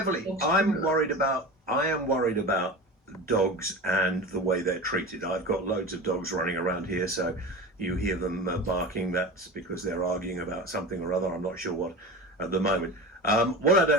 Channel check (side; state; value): both; normal; correlation 0.30